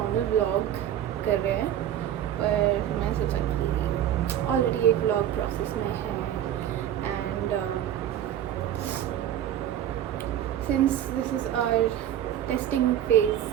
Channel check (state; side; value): quieter; left; 11.0 dB